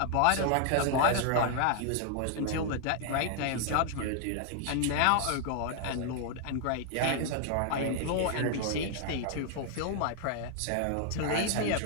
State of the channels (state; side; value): different; both; correlation 0.00